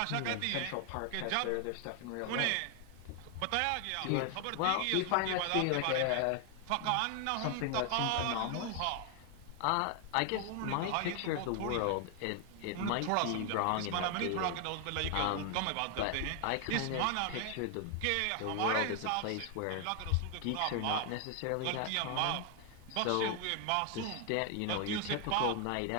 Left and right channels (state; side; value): different; both; correlation 0.00